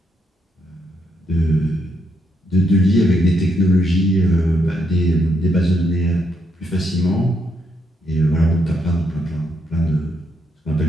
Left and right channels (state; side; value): normal; both; correlation 0.77